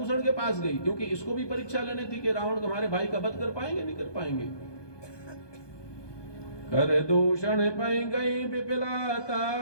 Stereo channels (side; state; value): right; late; 1.2 ms